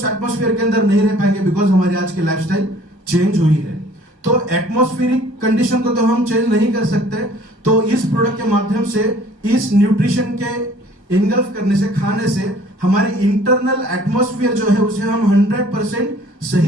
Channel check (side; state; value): left; late; 1.4 ms